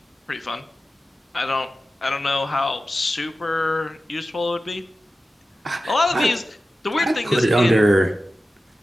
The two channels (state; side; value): normal; both; correlation 0.94